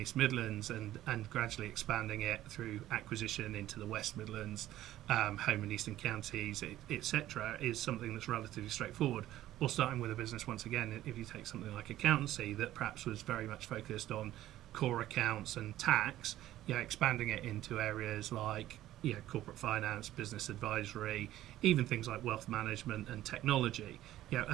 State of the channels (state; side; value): quieter; left; 14.0 dB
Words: Midlands and gradually expanding it through acquisition into the West Midlands, home and eastern counties, etc., is something that's relatively straightforward. Or starting with a business, once again, if you take something like accountancy that perhaps was very much focused on core accounts and tax, expanding it into areas like corporate finance, business advisory, even things like wealth management and technology,